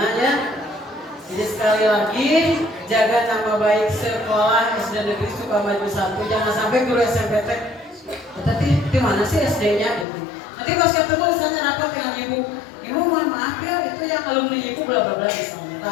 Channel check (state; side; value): drops out; right; at 10.1 s